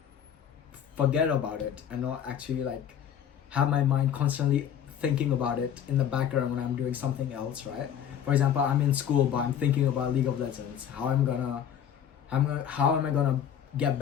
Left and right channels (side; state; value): right; quieter; 9.0 dB